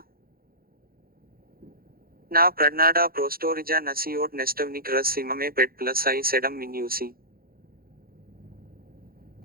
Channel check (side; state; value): left; late; 0.43 ms